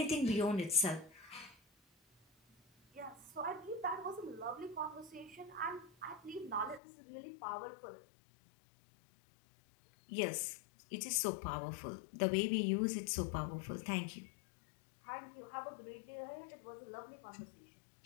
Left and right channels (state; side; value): drops out; right; at 6.8 s